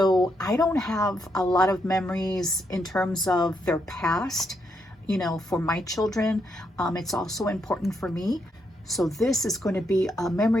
I don't have a lot of memories in terms of their past, for my children. It's also important for me. So this is going to be a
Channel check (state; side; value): normal; both; correlation 0.79